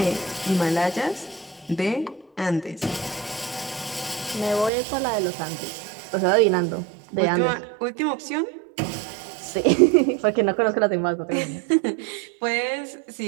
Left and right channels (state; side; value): drops out; left; at 4.7 s